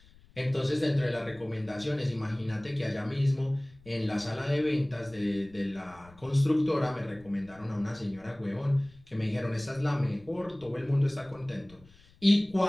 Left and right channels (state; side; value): noise; left; rumble, 25 dB below the sound